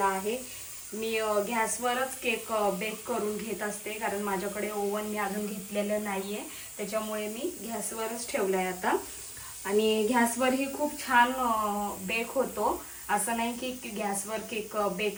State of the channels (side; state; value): both; identical; correlation 1.00